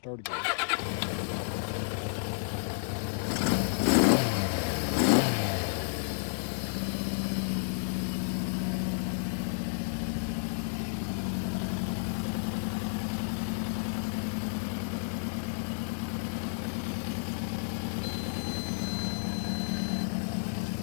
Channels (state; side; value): silent; right; digital silence